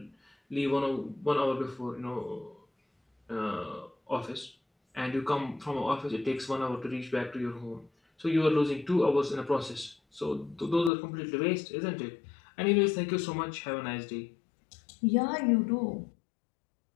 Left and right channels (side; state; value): right; drops out; at 10.9 s